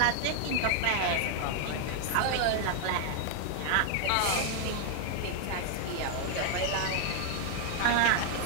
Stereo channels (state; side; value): different; both; correlation 0.00